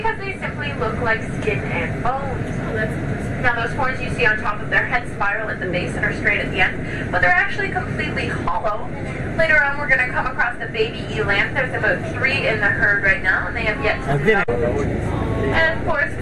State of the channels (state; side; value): identical; both; correlation 1.00